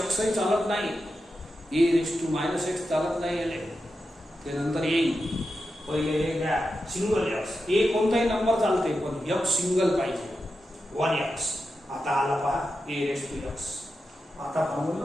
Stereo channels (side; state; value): both; normal; correlation 0.89